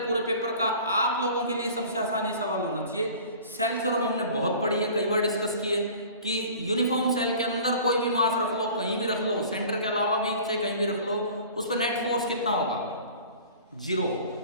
पूरे पेपर का आप लोगों के लिए सबसे आसान ये सवाल होना चाहिए। सेल थ्योरम हमने बहुत पढ़ी है, कई बार डिस्कस किए कि यूनिफॉर्म सेल के अंदर कोई भी मास रख लो, कहीं भी रख लो, सेंटर के अलावा भी चाहे कहीं भी रख लो, उस पर नेट फोर्स कितना होगा? 0।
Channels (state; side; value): inverted; both; correlation -0.44